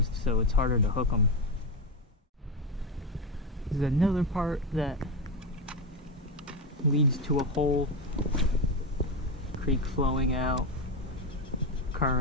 so it's harder to hook them. This is another part that leads to a hole. Creek flowing out,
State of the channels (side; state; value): both; normal; correlation 0.13